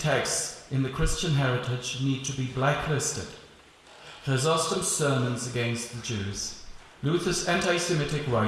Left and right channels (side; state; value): both; identical; correlation 1.00